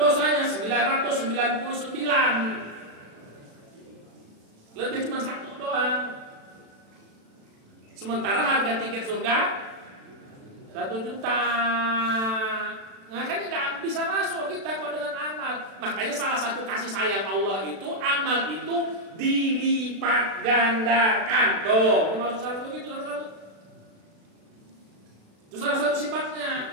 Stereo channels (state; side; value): late; left; 36 ms